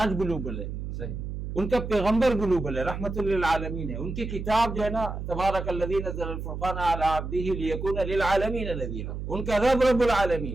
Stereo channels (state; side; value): noise; right; hum, 6 dB below the sound